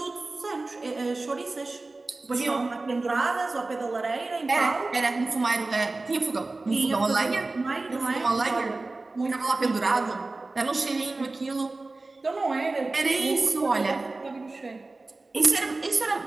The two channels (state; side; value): quieter; left; 3.3 dB